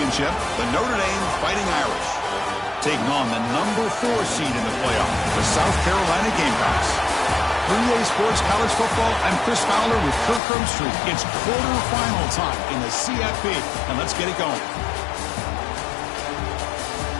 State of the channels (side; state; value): right; drops out; at 10.4 s